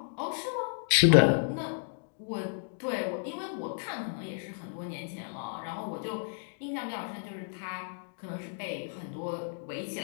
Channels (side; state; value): right; silent; digital silence